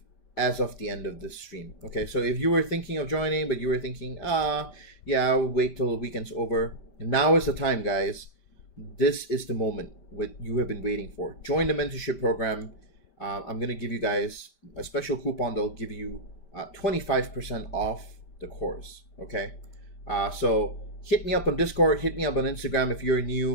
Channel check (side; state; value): right; late; 5.1 ms